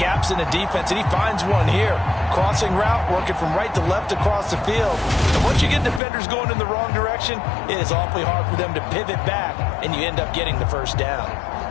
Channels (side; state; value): right; drops out; at 6.0 s